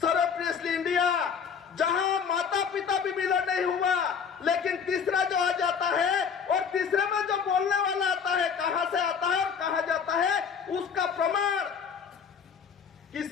सर्वप्रियसली इंडिया, लेकिन तीसरा जो आ जाता है और तीसरे में जो बोलने वाला आता है, कहां से आता है और कहां जाता है, उसका प्रमाण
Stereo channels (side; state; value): right; quieter; 6.6 dB